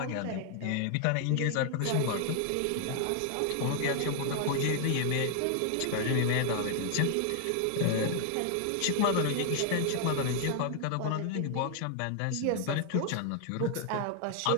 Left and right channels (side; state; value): both; different; correlation 0.00